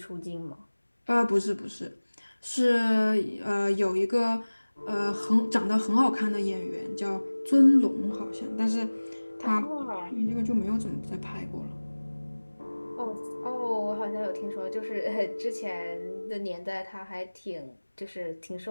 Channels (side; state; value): both; inverted; correlation -1.00